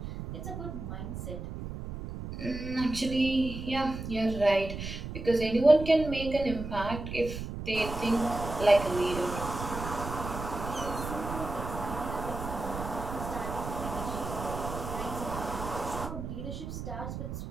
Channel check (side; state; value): right; noise; rumble, 7 dB below the sound